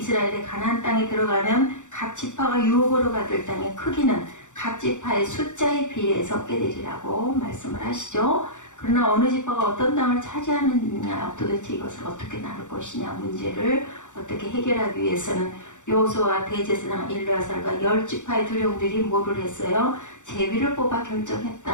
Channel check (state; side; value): late; right; 0.85 ms